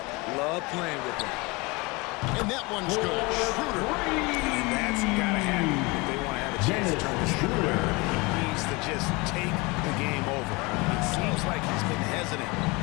love playing with him. And that one's good. Schroeder. And that's got to happen if they want to have a chance to turn this thing around. He needs to just take the game over. It seems like he's been hesitant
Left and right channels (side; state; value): right; quieter; 25.6 dB